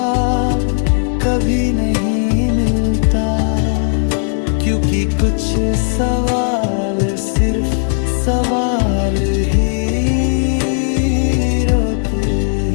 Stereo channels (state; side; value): silent; right; digital silence